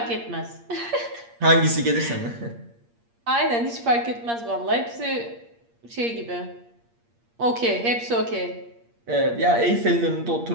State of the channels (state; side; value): late; left; 8.6 ms